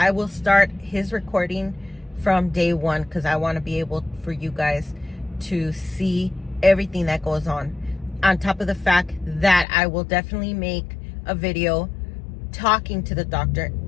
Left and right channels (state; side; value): drops out; right; at 9.7 s